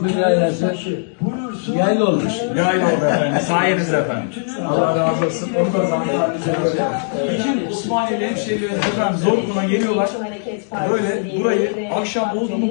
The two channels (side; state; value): right; silent; digital silence